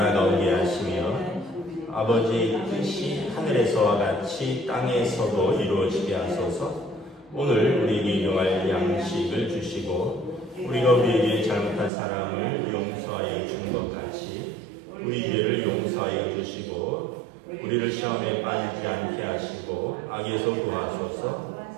오게 하시며 아버지의 뜻이 하늘에서와 같이 땅에서도 이루어지게 하소서. 오늘 우리에게 일용할 양식을 주시고 우리가 우리에게 잘못한 사람을 용서하여 준 것 같이 우리 죄를 용서하여 주시고 우리를 시험에 빠지지 않게 하시고 악에서 구하소서.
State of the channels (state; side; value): drops out; left; at 11.9 s